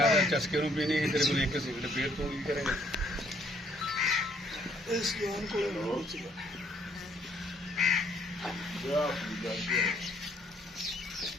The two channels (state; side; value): normal; both; correlation 0.66